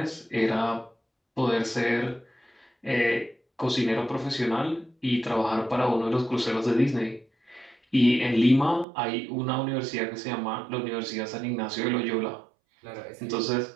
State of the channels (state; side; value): drops out; left; at 8.8 s